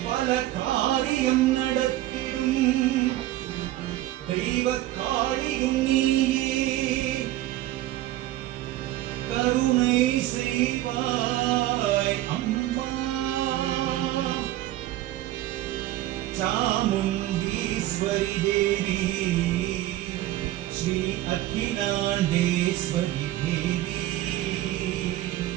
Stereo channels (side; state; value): left; quieter; 15.0 dB